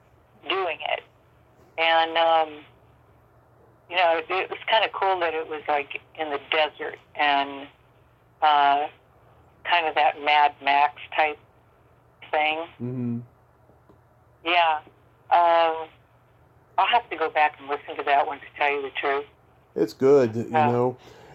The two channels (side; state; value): both; identical; correlation 1.00